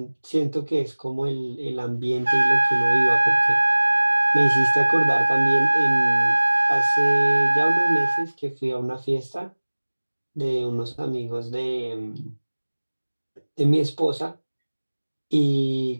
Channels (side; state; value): both; inverted; correlation -1.00